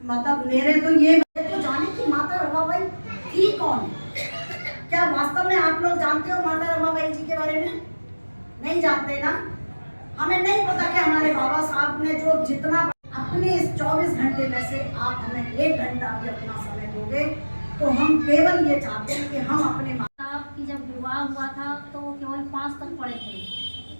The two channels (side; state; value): both; inverted; correlation -1.00